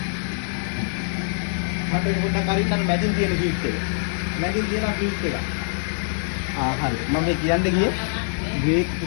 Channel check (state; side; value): silent; right; 63 dB below the other